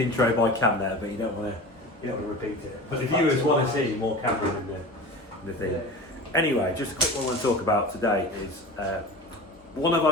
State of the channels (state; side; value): normal; both; correlation 0.33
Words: intro by Cam there, but you don't want to repeat it. But the viewers want to see more Cameron in the thing. Anyway, just a quick one I want to talk about today is one of